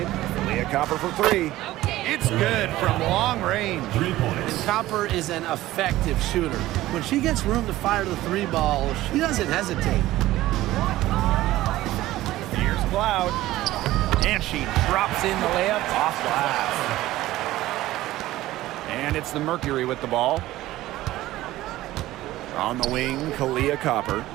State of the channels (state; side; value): quieter; left; 16.1 dB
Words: Leah Copper for three. It's good from long range. 3 points. And Copper is an effective shooter. When she gets room to fire the three ball, she doesn't hesitate. Here's Cloud. And she drops in the layup off glass. And it's the Mercury with the ball. On the wing, Kalia Copper.